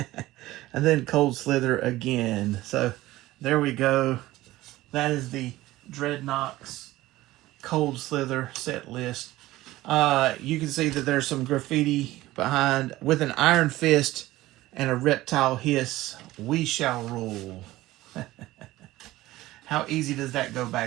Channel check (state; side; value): quieter; left; 17.1 dB